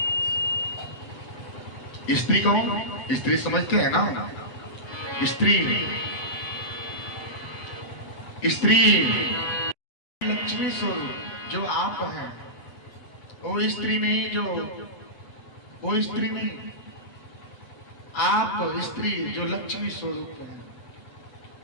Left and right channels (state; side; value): late; right; 8.1 ms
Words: स्त्री कौन? स्त्री समझते हैं ना? स्त्री लक्ष्मी स्वरूप जो आप हैं, वो स्त्री नहीं, आप स्त्री जो लक्ष्मी स्वरूप है।